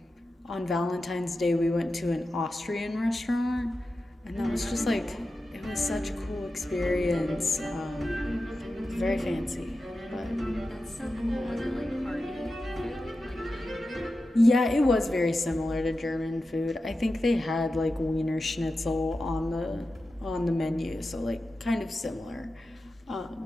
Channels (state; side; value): normal; both; correlation 0.92